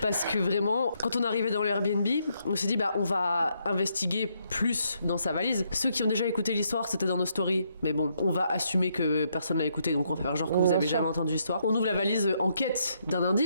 Parce que vraiment, quand on arrivait dans le Airbnb, on s'est dit, bah, on va investiguer plus dans sa valise. Ceux qui ont déjà écouté l'histoire, c'était dans nos stories. Mais bon, on va assumer que personne l'a écouté, donc on va faire genre que vous avez jamais entendu l'histoire. On ouvre la valise en quête d'un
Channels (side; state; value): both; inverted; correlation -0.75